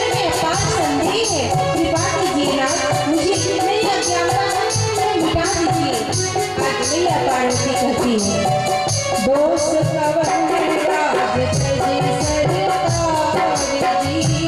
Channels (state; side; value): noise; left; rumble, 26 dB below the sound